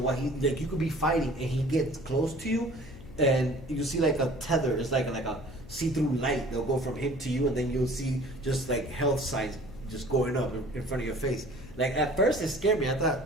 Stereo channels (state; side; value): noise; left; hum, 18 dB below the sound